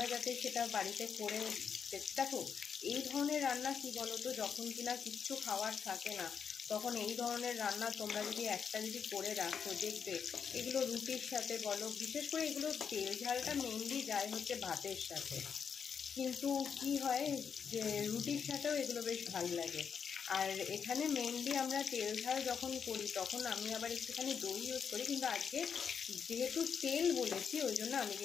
যাতে সেটা বাড়িতে করে দেখো। এই ধরনের রান্না কি বলো তো, যখন কিনা কিচ্ছু খাওয়ার থাকে না তখন এই ধরনের রান্না তোমরা যদি একটা যদি করে রাখো, দেখবে এগুলো রুটির সাথে বলো, বিশেষ করে এগুলো তেল ঝালটা মেনলি যায় হচ্ছে ভাতের সাথে, কিন্তু কি হয় যে রুটির সাথেও এগুলো বেশ ভালো লাগে। আর এখানে মেনলি আমরা তেল ঝাল যখন করি তখন আমি আবার একটুখানি দই ইউজ করি, কিন্তু আজকে যেহেতু তেল বলেছি ওই জন্য আমি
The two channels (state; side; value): quieter; right; 6.8 dB